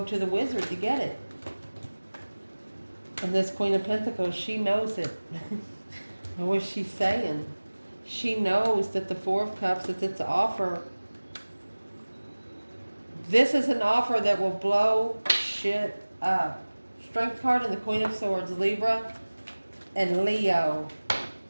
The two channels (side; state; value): both; inverted; correlation -1.00